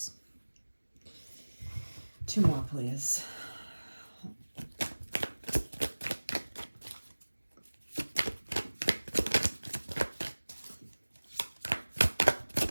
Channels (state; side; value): inverted; both; correlation -1.00